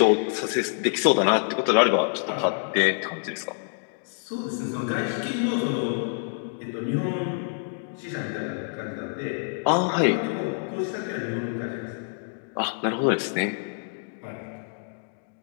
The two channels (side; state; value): right; silent; digital silence